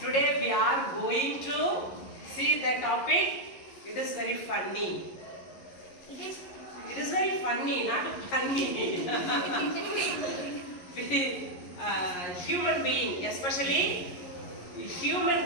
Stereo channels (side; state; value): right; late; 11 ms